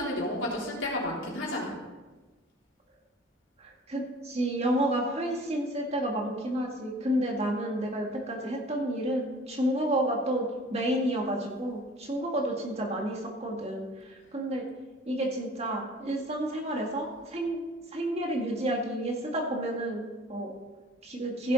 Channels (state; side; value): normal; both; correlation 0.46